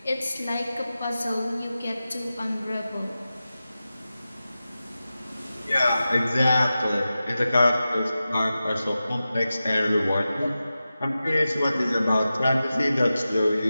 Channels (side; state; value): both; inverted; correlation -0.93